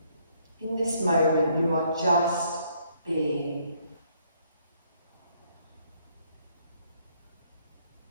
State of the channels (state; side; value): inverted; both; correlation -0.68